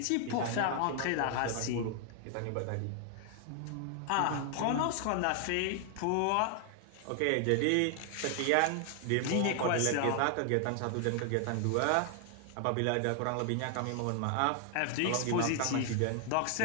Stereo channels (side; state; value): both; different; correlation 0.00